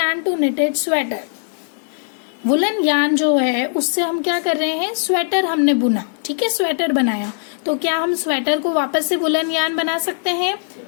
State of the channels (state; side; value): silent; right; 66 dB below the other